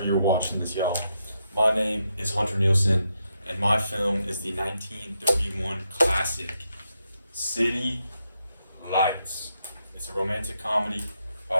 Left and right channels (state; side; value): inverted; both; correlation -0.82